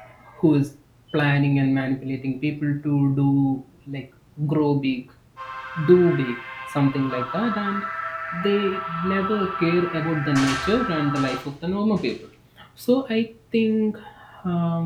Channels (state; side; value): identical; both; correlation 1.00